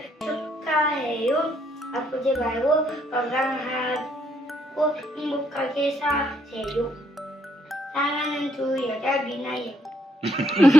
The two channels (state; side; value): normal; both; correlation 0.72